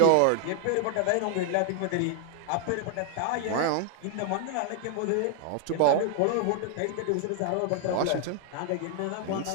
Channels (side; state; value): both; different; correlation 0.00